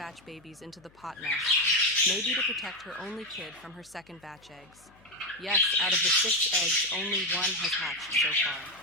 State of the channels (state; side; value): noise; left; hum, 29 dB below the sound